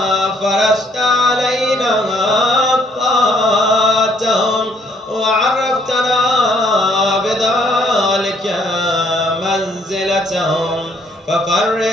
فرشت علينا طاعتهم وعرفتنا بذلك منزلتهم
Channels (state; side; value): normal; both; correlation 0.65